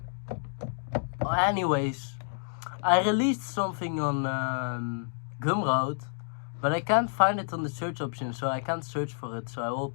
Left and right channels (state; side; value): silent; right; digital silence